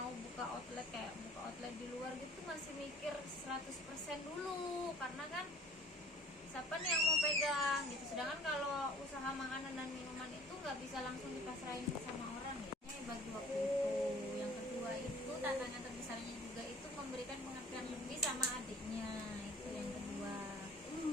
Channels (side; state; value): both; normal; correlation 0.50